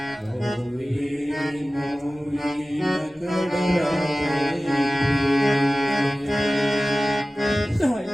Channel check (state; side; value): normal; both; correlation 0.97